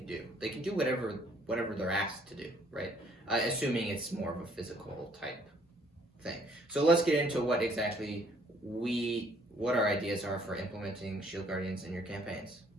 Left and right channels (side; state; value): both; normal; correlation 0.62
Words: do. They can do whatever they're asked to do, right? Assuming it's more of a physical type thing. So let's get into what exactly what our ideas are for implementing shield guardians in your campaigns.